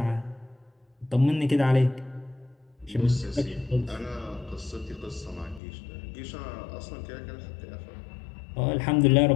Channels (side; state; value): right; drops out; at 5.6 s